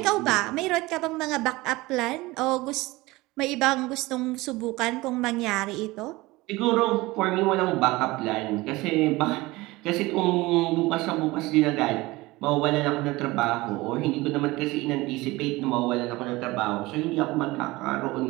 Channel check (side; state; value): left; quieter; 20.8 dB